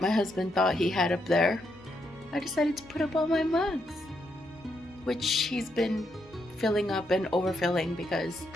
my husband thought he had up there, I decided to put up all my mugs, which he's been filling up and overfilling because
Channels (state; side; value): normal; both; correlation 0.79